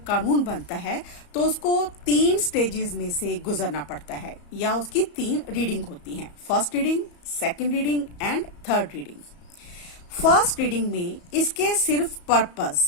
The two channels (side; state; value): right; late; 34 ms